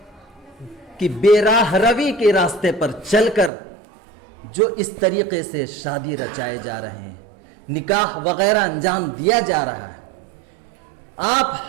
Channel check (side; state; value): left; drops out; at 3.5 s